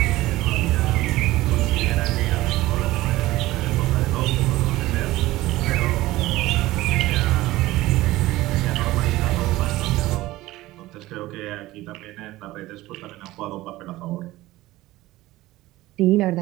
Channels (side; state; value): left; quieter; 17.5 dB